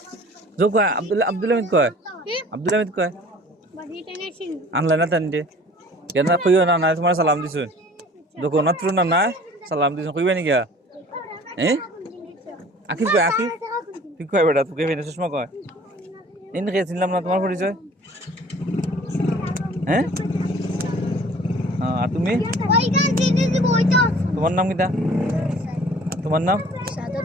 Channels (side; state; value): both; normal; correlation 0.49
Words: জো কয় আব্দুল হামিদ কয় আব্দুল হামিদ কয় আনলাই না তান দে কেন কইও না না তোমার সালাম দিছো দেখো না তুই না না সালাম দিছো কইবে নি গা আকিব কয় আকিব তুই কয় বেটা তুই কইবে না সুষমা কয় এনে কে চিনলাম না তোমার পরিচয় হ্যাঁ আর তুমি তোমার নাম কিটা তোমার নাম